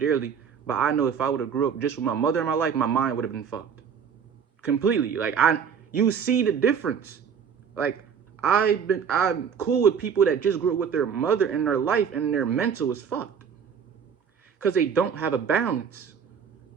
but I know if I would have grew up just with my mother in my life, my mind would have been fucked. Completely. Like, you see the difference. Like, I'm cool with people that just grew up with their mother in their life and their mental is fucked. Because they don't have a balance.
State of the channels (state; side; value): quieter; left; 7.1 dB